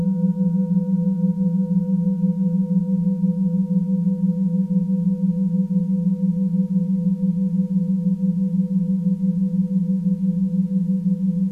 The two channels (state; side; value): identical; both; correlation 1.00